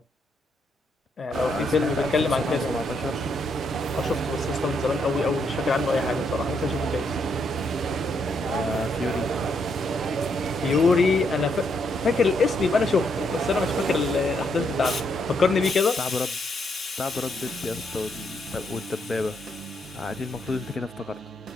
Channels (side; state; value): both; normal; correlation 0.76